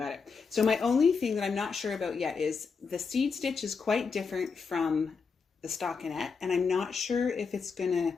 it. So my only thing that I'm not sure about yet is the seed stitch is quite different from the stockinette, and I'm not sure if it's going to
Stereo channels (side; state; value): right; quieter; 5.3 dB